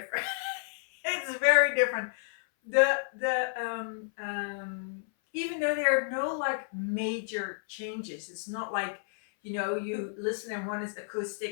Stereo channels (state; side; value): silent; right; 57 dB below the other